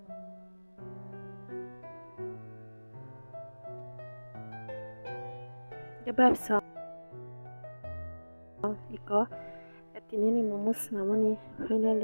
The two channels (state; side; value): inverted; both; correlation -1.00